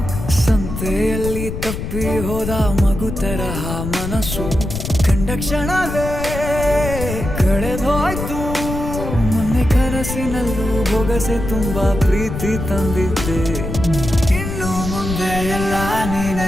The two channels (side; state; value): left; noise; rumble, 5 dB below the sound